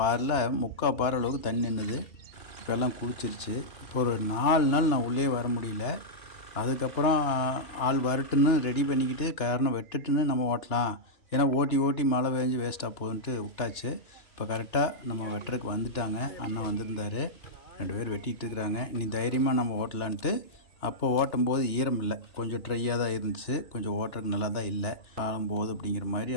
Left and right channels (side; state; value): right; late; 2.9 ms